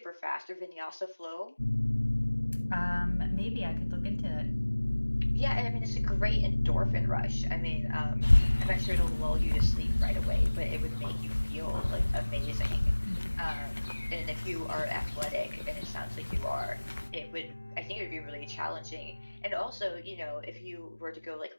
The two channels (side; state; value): both; inverted; correlation -1.00